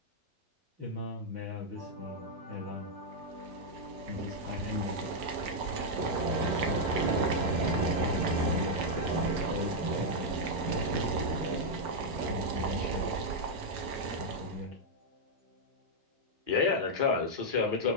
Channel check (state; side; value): late; left; 6.2 ms